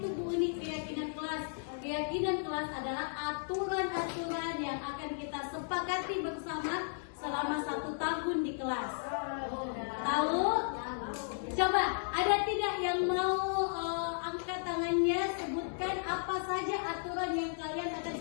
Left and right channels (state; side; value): silent; right; digital silence